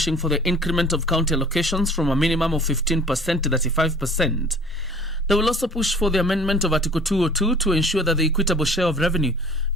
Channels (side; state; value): both; normal; correlation 0.49